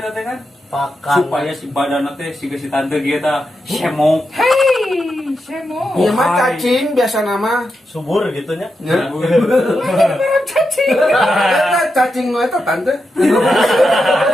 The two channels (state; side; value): normal; both; correlation 0.87